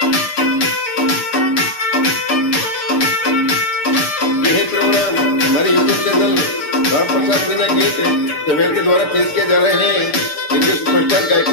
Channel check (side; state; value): right; late; 6.6 ms